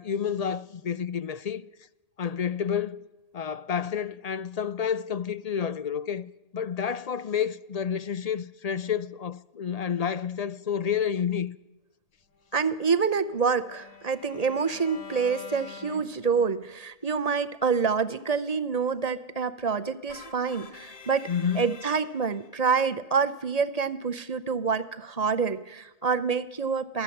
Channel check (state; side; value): late; right; 1.8 ms